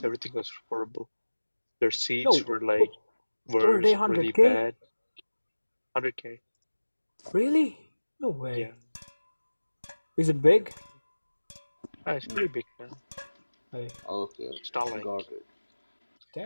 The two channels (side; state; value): both; inverted; correlation -1.00